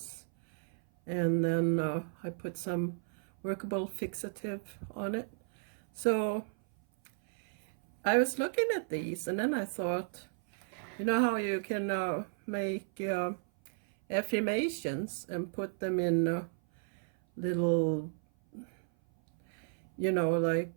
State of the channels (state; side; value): silent; left; 55 dB below the other